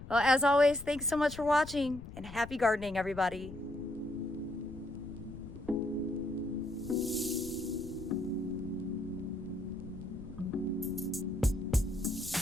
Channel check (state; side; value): noise; left; rumble, 13 dB below the sound